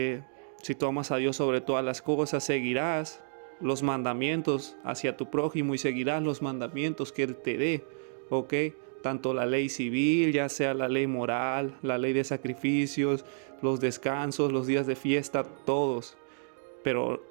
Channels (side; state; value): left; silent; digital silence